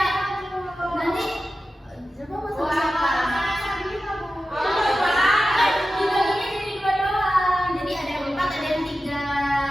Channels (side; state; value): both; normal; correlation 0.93